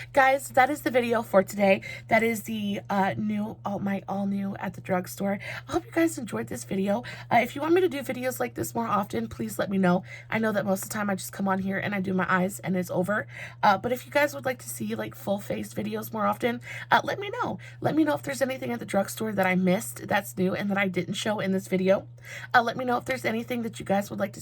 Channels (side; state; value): both; identical; correlation 1.00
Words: Guys, that is the video for today. That is the all new at the drugstore. I hope you guys enjoyed this video. If you want me to do videos like this more often, please let me know. I know that most of the time I just come on here and I do my eyes and it's over. But if you guys would like to see like full face videos more often, let me know. Let me know if there's anything at the drugstore that I missed that's new and that I didn't show in this video. Let me know if there's anything that you guys would like to